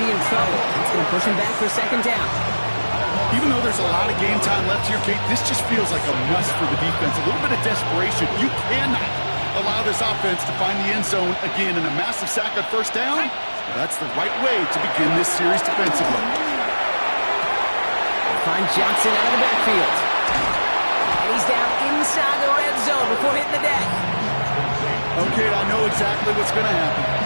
be in trouble. It's going to push him back for 2nd down. Even though there's a lot of game time left here, Kate, this just feels like a must for the defense. A little bit of desperation. You cannot allow this offense to find the end zone again in a massive sack on 1st down. That's the right way to begin this series defensively. Find Johnson out of the backfield. And he's down inside the red zone before hitting the deck. Okay, I know exactly what's going to happen.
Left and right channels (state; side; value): inverted; both; correlation -1.00